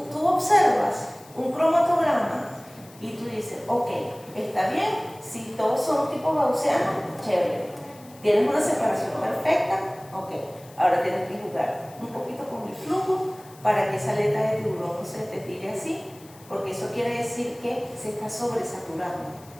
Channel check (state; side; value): noise; left; hiss, 24 dB below the sound